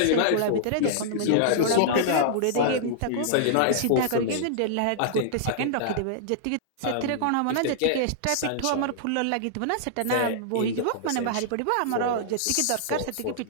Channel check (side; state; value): both; different; correlation -0.01